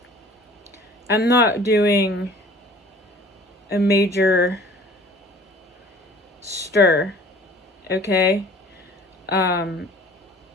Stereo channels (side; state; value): both; normal; correlation 0.48